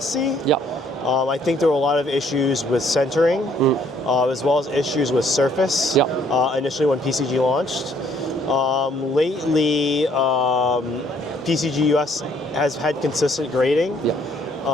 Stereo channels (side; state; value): both; normal; correlation 0.65